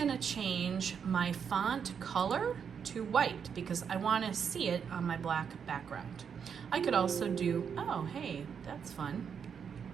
to change my font color to white because I want to see it on my black background. I could also do, oh, hey, that's fun.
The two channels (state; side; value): quieter; left; 7.1 dB